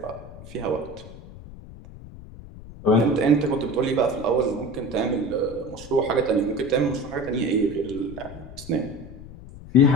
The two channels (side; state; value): left; noise; rumble, 16 dB below the sound